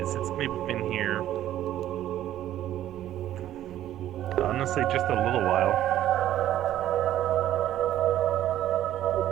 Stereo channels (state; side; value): quieter; left; 12.5 dB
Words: it's maybe been here, honestly, just a little while.